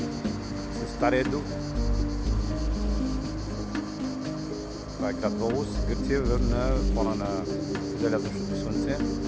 с Стария дух. Това е град Волос, Гърция, на фона на залязъчното слънце.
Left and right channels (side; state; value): both; identical; correlation 1.00